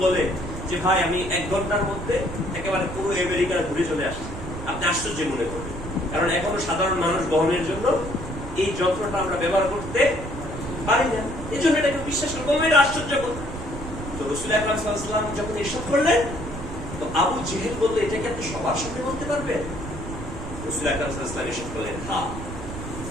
বলে যে ভাই আমি 1 ঘন্টার মধ্যে একেবারে পুরো আমেরিকা ঘুরে চলে আসছি, আপনি আশ্চর্য মনে করবেন, কারণ এখনো সাধারণ মানুষ বহনের জন্য এই যন্ত্রটা আমরা ব্যবহার করতে পারি না। এই জন্য এটাকে বিশ্বাস করবো, এটা আশ্চর্যকর। তো রাসূল আকরাম সাল্লাল্লাহু আলাইহি ওয়াসাল্লাম যখন ইরশাদ করলেন, তো আবু জেহেল বলল, এটাকে আপনি সবার সামনে বলতে পারবেন? রাসূল আকরাম সাল্লাল্লাহু আলাইহি ওয়াসাল্লাম ইরশাদ করলেন, হ্যাঁ।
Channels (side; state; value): right; noise; rumble, 9 dB below the sound